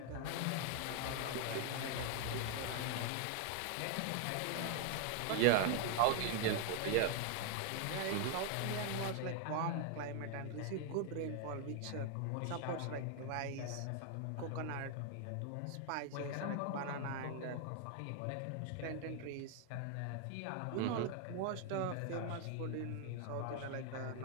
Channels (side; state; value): both; different; correlation 0.00